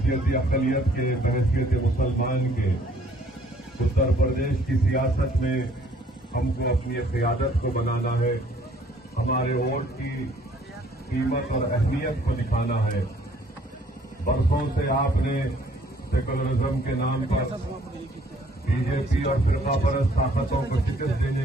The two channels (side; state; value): both; normal; correlation 0.60